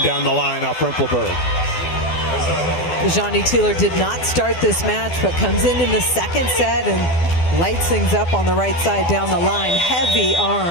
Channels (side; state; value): right; late; 12 ms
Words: down the line off Rempelberg. Ajani Teeler did not start this match, but comes in the second set and lights things up on the right side down the line. Heavy